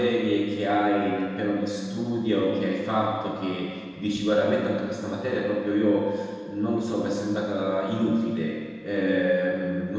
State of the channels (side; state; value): both; identical; correlation 1.00